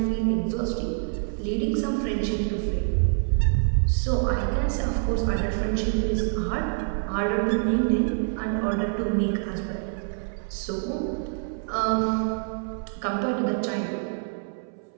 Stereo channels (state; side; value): silent; left; 61 dB below the other